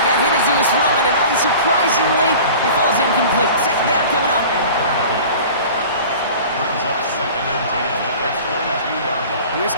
got hit as he was throwing, and unsurprisingly, he falls incomplete. 2nd down coming up. Brings up 2nd and 10 at the 22-yard line. Here's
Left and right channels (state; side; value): inverted; both; correlation -0.41